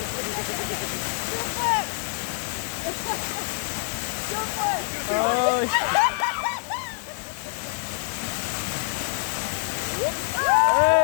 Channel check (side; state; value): right; silent; digital silence